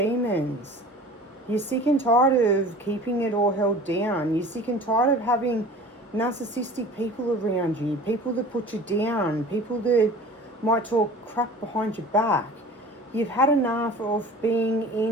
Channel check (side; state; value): both; normal; correlation 0.42